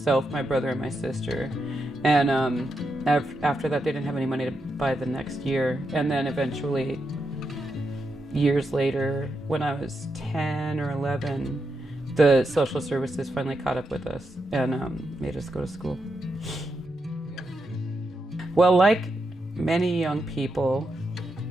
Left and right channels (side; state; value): both; normal; correlation 0.84